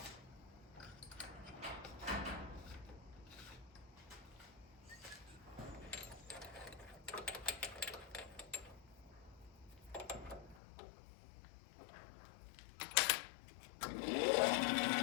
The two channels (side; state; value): right; drops out; at 10.6 s